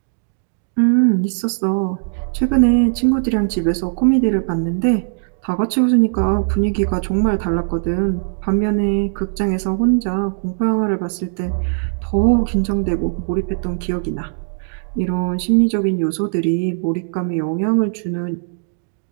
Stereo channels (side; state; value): left; silent; digital silence